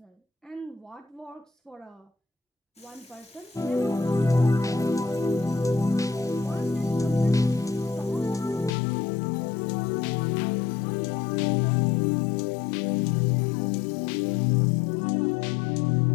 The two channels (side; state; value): right; drops out; at 8.7 s